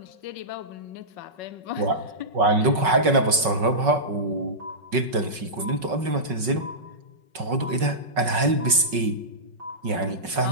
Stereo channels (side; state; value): left; late; 5.4 ms